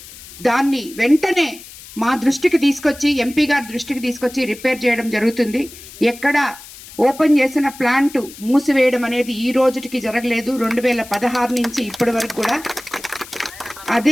దాన్ని వెంటనే మా దృష్టికి తీసుకొచ్చి, ఎంపీ గారి దృష్టికి తీసుకొచ్చి రిపేర్ చేయడం జరుగుతుంది. ఎక్కడ ఓపెన్ చేసిన ప్లాంట్ మూసివేయడం అనేది ఈ రోజుకి జరగలేదు. 2016 నుంచి ఇప్పటి వరకు కూడా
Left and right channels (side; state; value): left; noise; hiss, 17 dB below the sound